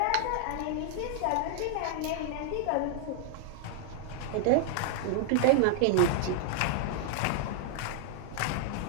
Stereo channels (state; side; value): different; both; correlation -0.01